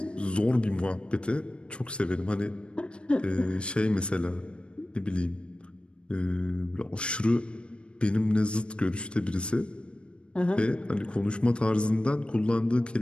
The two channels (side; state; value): right; late; 0.057 ms